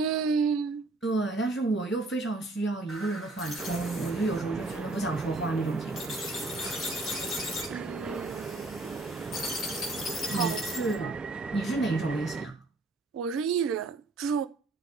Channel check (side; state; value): left; quieter; 3.0 dB